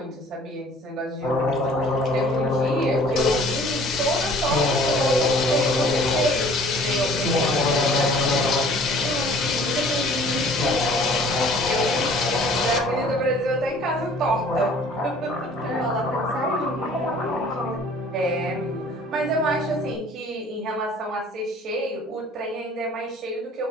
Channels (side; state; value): both; normal; correlation 0.52